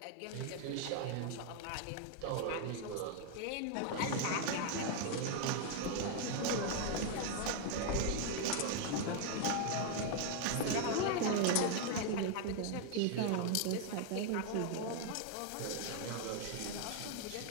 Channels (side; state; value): both; different; correlation 0.00